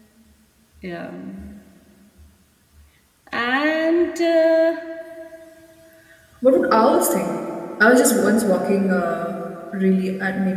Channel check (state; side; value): identical; both; correlation 1.00